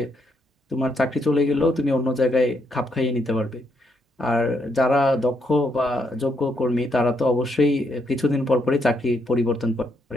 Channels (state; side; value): normal; both; correlation 0.76